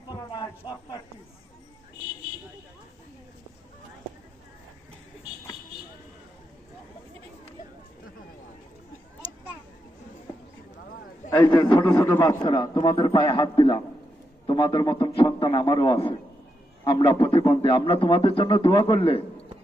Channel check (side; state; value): both; normal; correlation 0.84